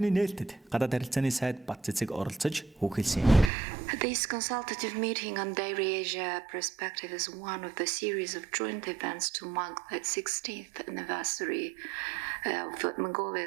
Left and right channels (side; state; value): left; drops out; at 3.5 s